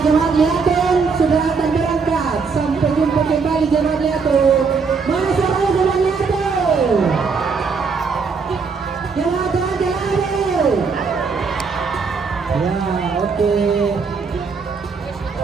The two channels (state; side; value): quieter; left; 5.1 dB